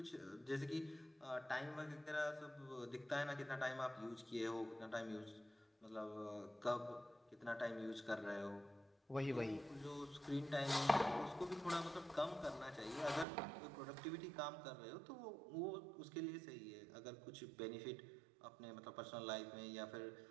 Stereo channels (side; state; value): left; drops out; at 13.2 s